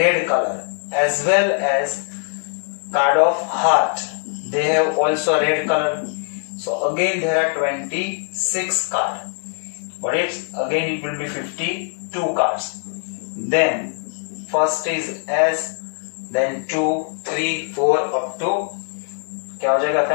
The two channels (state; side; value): silent; right; 55 dB below the other